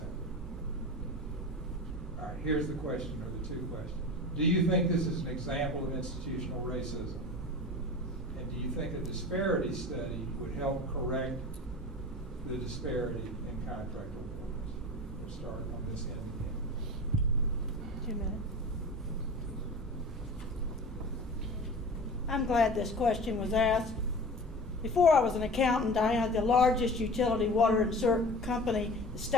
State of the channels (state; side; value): normal; both; correlation 0.36